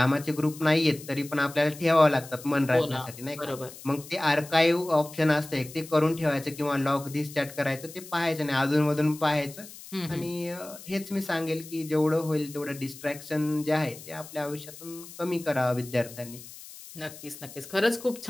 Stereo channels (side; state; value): left; noise; hiss, 16 dB below the sound